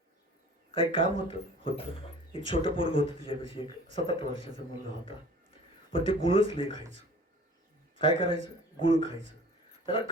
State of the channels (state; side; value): normal; both; correlation 0.46